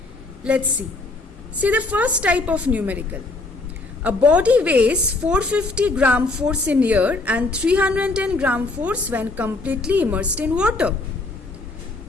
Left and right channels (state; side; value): quieter; right; 3.3 dB